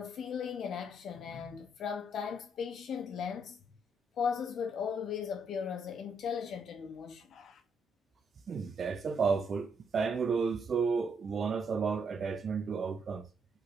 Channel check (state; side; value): normal; both; correlation 0.74